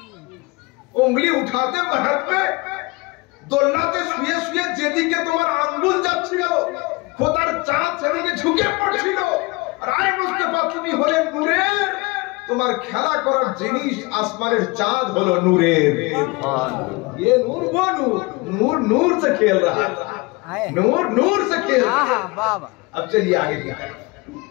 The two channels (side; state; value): right; quieter; 25.4 dB